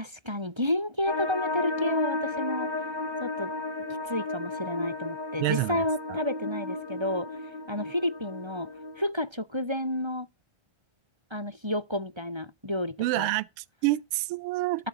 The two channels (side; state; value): left; late; 1.3 ms